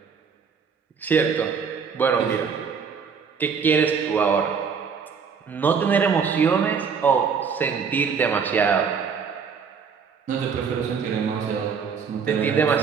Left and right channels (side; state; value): left; quieter; 6.2 dB